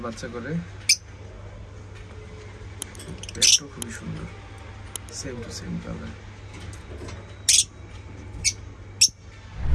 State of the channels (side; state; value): both; identical; correlation 1.00